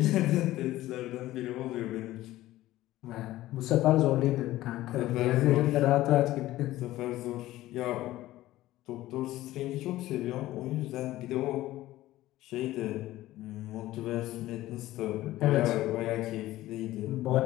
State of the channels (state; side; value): quieter; right; 15.9 dB